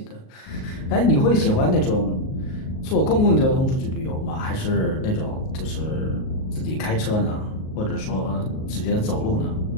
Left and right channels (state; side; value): late; right; 38 ms